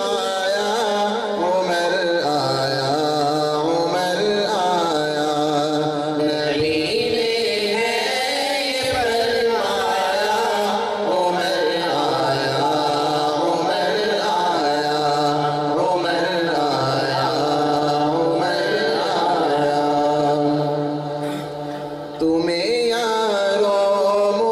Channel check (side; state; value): both; identical; correlation 1.00